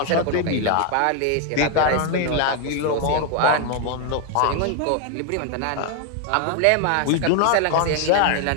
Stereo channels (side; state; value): both; different; correlation 0.00